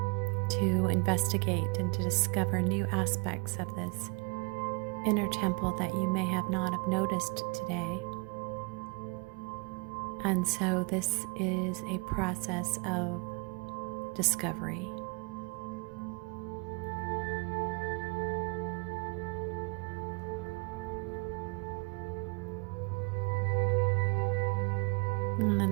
to investigate and to discover new aspects of this inner temple that you may have not have noticed today. And so this is a process of discovery. And then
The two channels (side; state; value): left; quieter; 31.3 dB